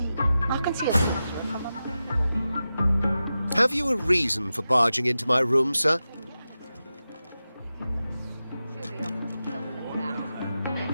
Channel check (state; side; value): inverted; both; correlation -0.92